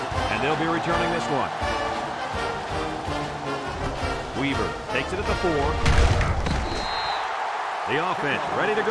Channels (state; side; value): identical; both; correlation 1.00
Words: And they'll be returning this one. Weaver takes it at the 4. The offense ready to